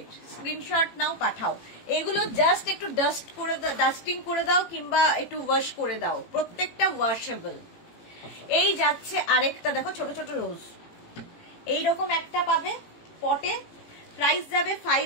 স্ক্রিনশট নাও পাঠাও। এগুলো জাস্ট একটু ডাস্টিং করে দাও কিংবা একটু ওয়াশ করে দাও, প্রত্যেকটা ওয়াশেবল। এই যাচ্ছে আরেকটা, দেখো ছোট ছোট রোজ, এইরকম একটা পাবে পটে, প্রাইস যাবে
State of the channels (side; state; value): right; late; 18 ms